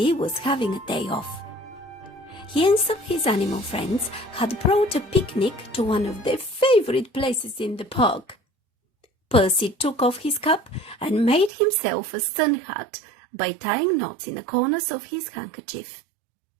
was having a day off. He and some of his animal friends had brought a picnic to one of their favorite places in the park. Percy took off his cap and made himself a sun hat by tying knots in the corners of his handkerchief.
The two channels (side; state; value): left; drops out; at 11.5 s